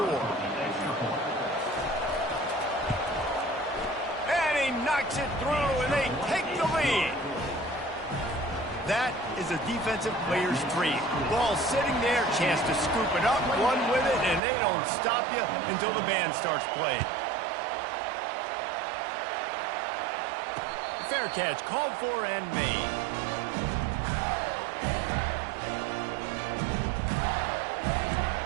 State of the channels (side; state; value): left; drops out; at 14.4 s